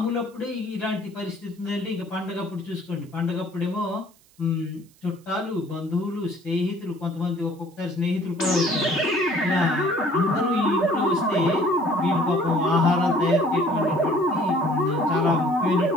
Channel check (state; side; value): noise; right; hiss, 30 dB below the sound